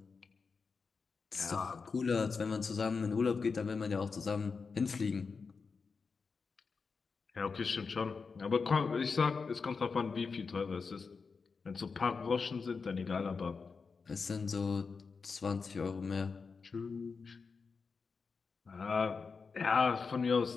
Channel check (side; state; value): right; quieter; 5.0 dB